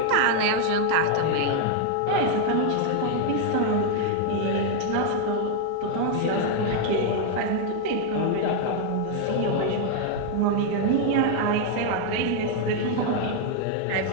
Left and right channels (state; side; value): different; both; correlation 0.00